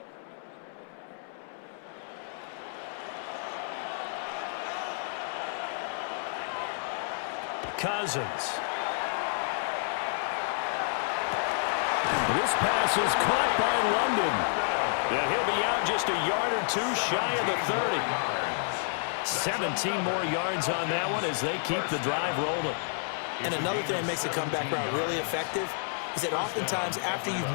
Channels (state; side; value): silent; right; 58 dB below the other